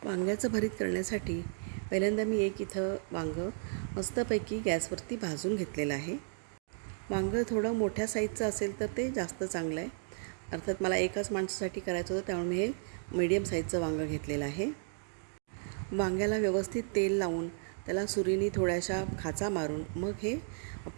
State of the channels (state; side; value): silent; left; digital silence